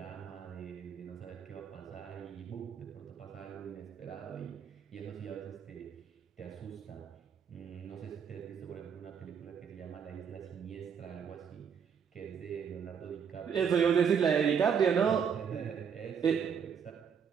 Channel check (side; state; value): left; quieter; 7.1 dB